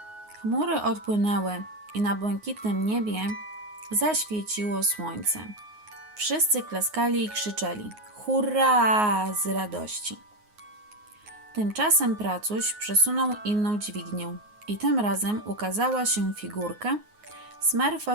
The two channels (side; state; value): left; late; 9.5 ms